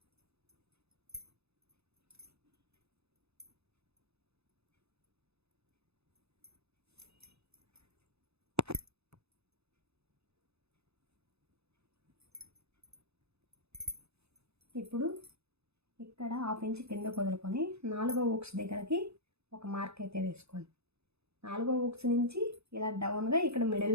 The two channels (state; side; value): late; left; 0.79 ms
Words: ఇప్పుడు ఇక్కడ 1/2 ఇంచ్ కింద వదులుకొని 4వ ఊక్స్ దగ్గరకి ఒక మార్క్ అయితే వేసుకోండి. 4వ ఊక్స్ నుంచి ఇలా డౌన్గా ఇక్కడ